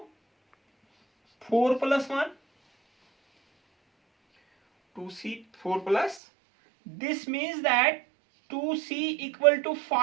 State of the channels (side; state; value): left; drops out; at 6.2 s